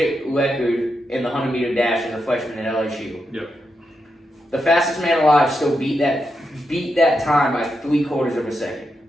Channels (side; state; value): both; normal; correlation 0.85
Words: record in the 100-meter dash as a freshman at LSU. Yep. The fastest man alive still beat that time by 3/4 of a second.